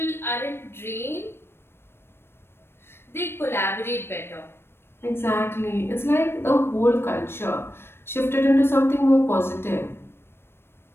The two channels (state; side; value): late; right; 0.12 ms